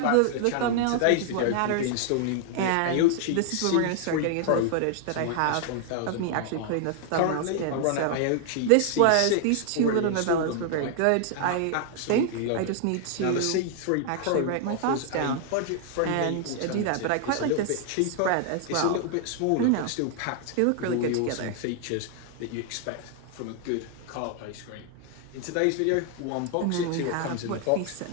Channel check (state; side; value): different; both; correlation 0.00